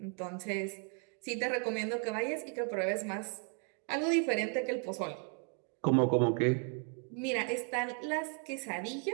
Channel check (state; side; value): quieter; left; 39.4 dB